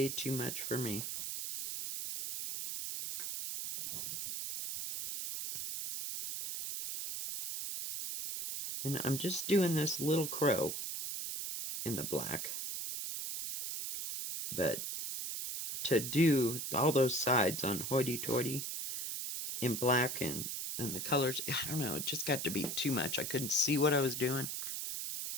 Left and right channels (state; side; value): noise; right; hiss, 4 dB below the sound